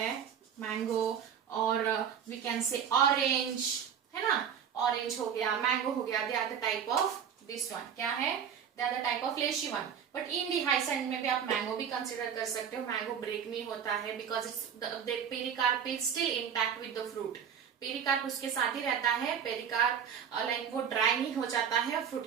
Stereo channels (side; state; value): left; quieter; 7.9 dB